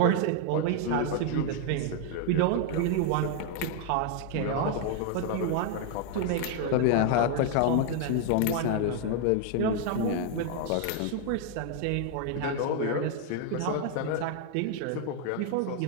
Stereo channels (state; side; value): different; both; correlation 0.00